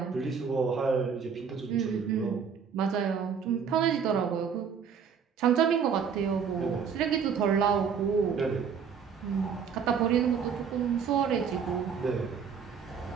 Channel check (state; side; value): quieter; left; 6.7 dB